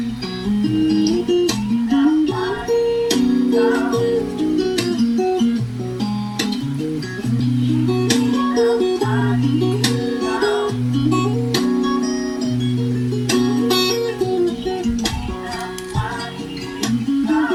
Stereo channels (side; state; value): both; identical; correlation 1.00